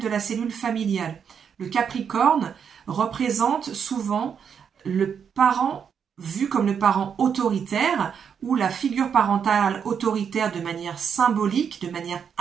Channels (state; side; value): quieter; left; 7.3 dB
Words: la cellule familiale. Le Capricorne représente souvent le parent vu comme le parent autoritaire ou la figure parentale autoritaire de manière symbolique, de manière